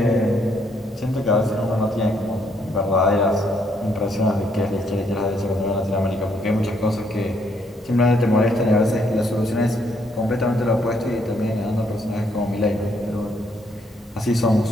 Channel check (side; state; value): both; normal; correlation 0.71